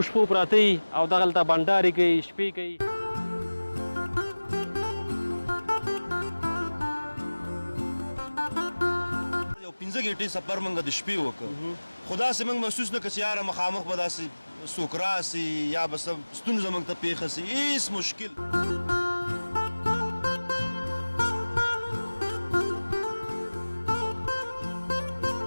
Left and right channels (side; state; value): both; inverted; correlation -1.00